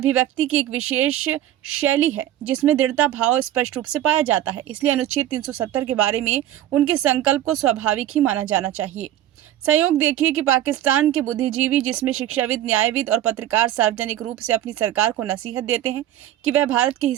की एक विशेष शैली है जिसमें दृढ़ता भाव स्पष्ट रूप से पाया जाता है, इसलिए अनुच्छेद 370 के बारे में उनके संकल्प को स्वाभाविक ही माना जाना चाहिए। संयोग देखिए कि पाकिस्तान के बुद्धिजीवी, जिसमें शिक्षाविद, न्यायविद और पत्रकार सार्वजनिक रूप से अपनी सरकार को नसीहत देते हैं कि वह भारत के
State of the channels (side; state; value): left; quieter; 12.5 dB